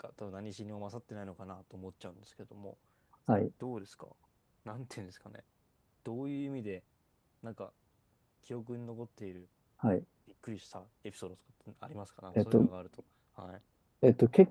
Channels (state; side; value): identical; both; correlation 1.00